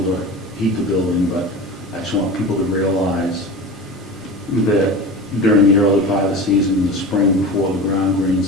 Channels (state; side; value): normal; both; correlation 0.30